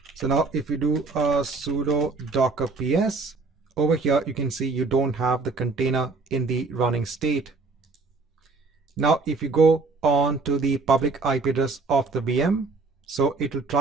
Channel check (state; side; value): quieter; left; 3.9 dB